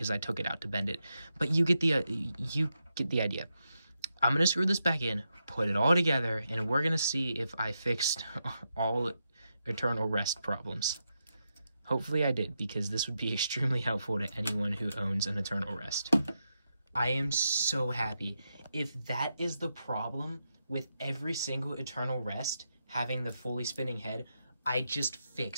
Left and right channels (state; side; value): inverted; both; correlation -0.85